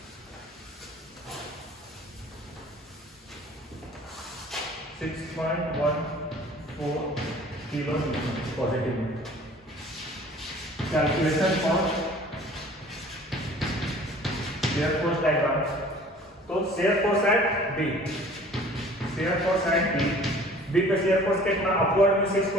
किलो न्यूटन पॉजिटिव में। Calculation for shear force diagram. तो shear force at B, shear force at B पे शेयर फोर्स कितना, अपवर्ड में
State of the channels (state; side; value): normal; both; correlation 0.49